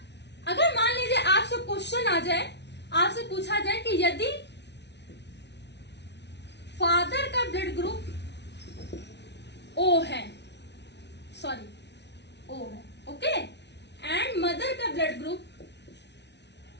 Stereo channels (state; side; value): late; right; 0.50 ms